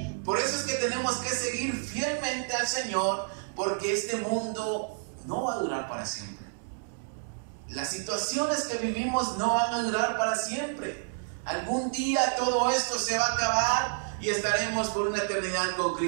Por eso es que tenemos que seguir fielmente al Señor, porque este mundo no va a durar para siempre. Las situaciones que vivimos no van a durar para siempre. Algún día todo esto se va a acabar y estaremos por una eternidad con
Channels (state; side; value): silent; left; digital silence